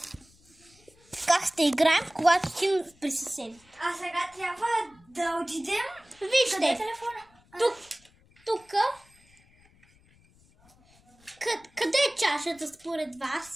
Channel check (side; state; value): left; noise; rumble, 30 dB below the sound